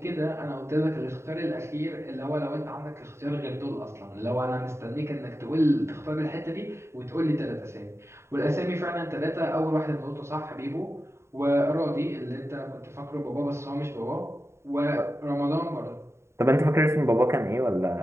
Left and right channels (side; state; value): left; late; 0.13 ms